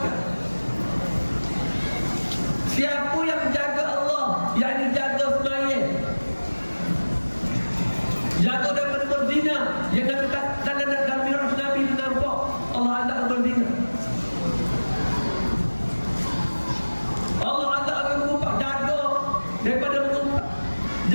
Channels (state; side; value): inverted; both; correlation -1.00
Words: Siapa yang jaga Allah, yakni jaga sembahyang, jaga daripada berzina, yang dalam miraj Nabi itu nampak Allah azab berzina. Allah azab mengumpat, jaga daripada mengumpat,